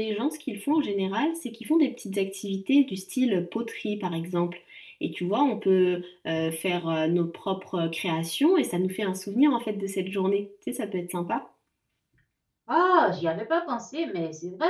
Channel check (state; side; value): identical; both; correlation 1.00